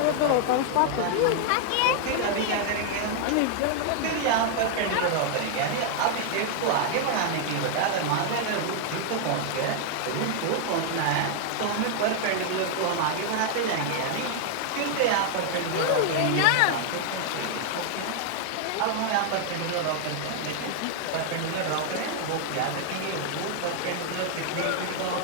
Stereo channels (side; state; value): both; different; correlation 0.00